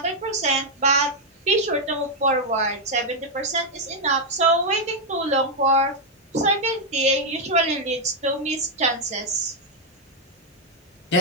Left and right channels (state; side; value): normal; both; correlation -0.01